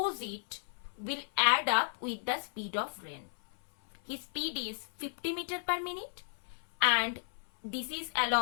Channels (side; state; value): right; silent; 55 dB below the other